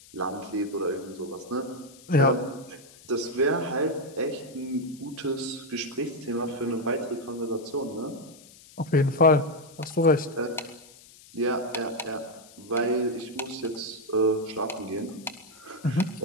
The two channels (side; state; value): left; noise; hiss, 22 dB below the sound